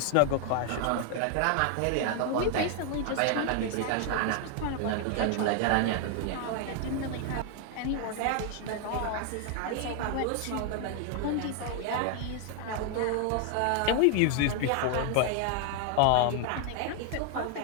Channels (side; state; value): both; different; correlation 0.00